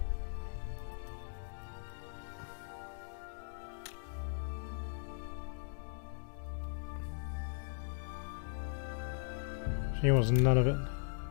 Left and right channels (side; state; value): right; silent; digital silence